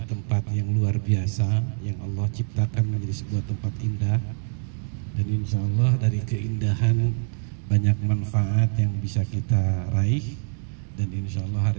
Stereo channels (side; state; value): left; silent; 62 dB below the other